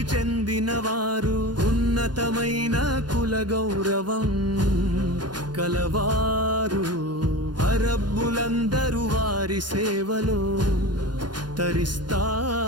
చెందినవారు. ఉన్నతమైన కుల గౌరవం కలవారు. అరబ్బులందరూ వారి సేవలో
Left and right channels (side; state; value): left; late; 0.70 ms